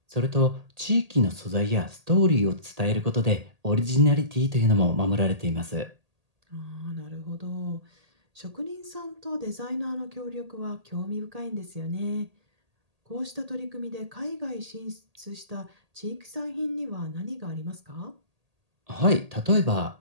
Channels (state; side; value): late; left; 1.8 ms